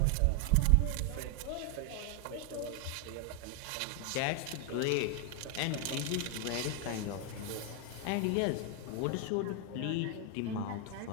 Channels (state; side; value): different; both; correlation 0.01